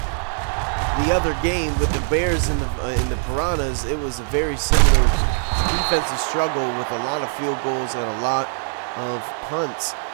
the other game with the Bears and the Piranhas, it was a very similar defensive struggle with a lot of field goals and a lot of punts.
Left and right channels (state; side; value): silent; left; 60 dB below the other